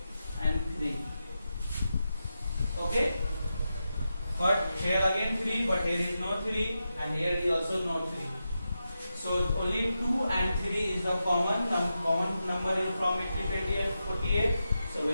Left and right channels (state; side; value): inverted; both; correlation -0.89